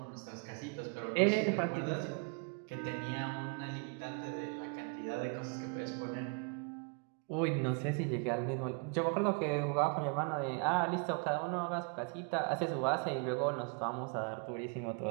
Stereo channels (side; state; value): left; quieter; 36.0 dB